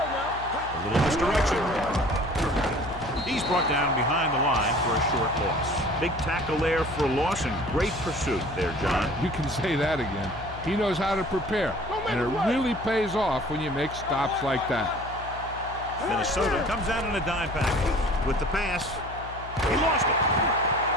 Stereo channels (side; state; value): left; noise; hum, 14 dB below the sound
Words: now. A little misdirection. He's brought down behind the line for a short loss. Big tackle there for a loss and great pursuit there, John. You can say that again. He knows how to prepare, and it really pays off when you make stops like that. Minnesota comes out in a dime package. With the pass, he lost it.